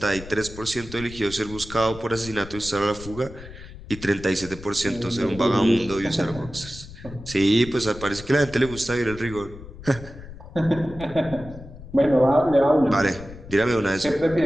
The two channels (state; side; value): noise; left; rumble, 15 dB below the sound